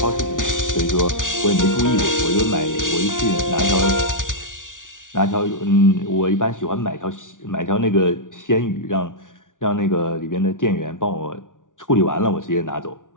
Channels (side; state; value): right; late; 0.88 ms